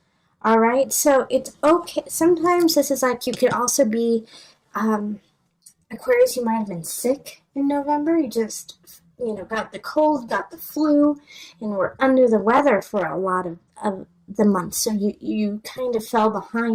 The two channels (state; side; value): identical; both; correlation 1.00